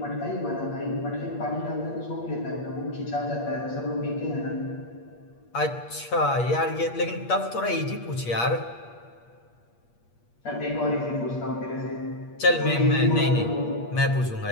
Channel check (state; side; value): late; right; 8.5 ms